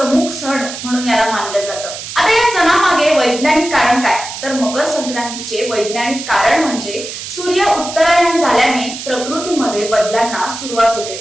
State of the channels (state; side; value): noise; right; hiss, 9 dB below the sound